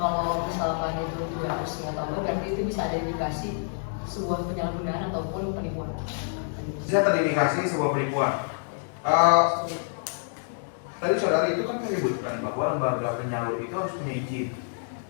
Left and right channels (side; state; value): right; silent; digital silence